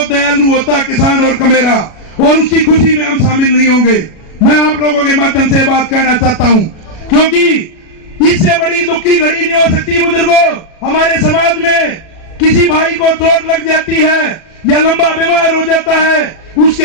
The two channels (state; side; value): late; right; 37 ms